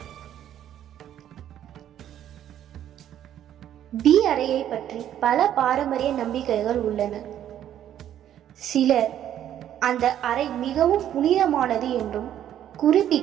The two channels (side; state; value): left; quieter; 10.9 dB